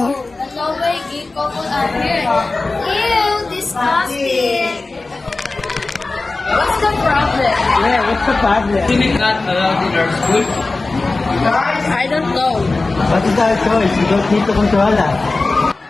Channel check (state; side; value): quieter; right; 3.4 dB